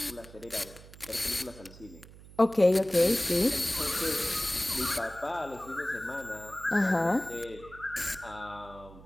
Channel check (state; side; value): noise; right; hum, 19 dB below the sound